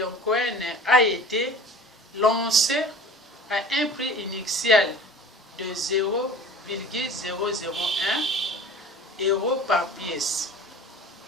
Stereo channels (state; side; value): normal; both; correlation 0.42